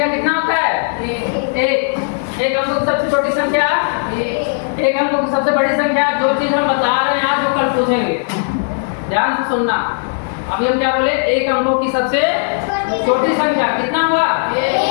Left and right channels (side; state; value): right; silent; 69 dB below the other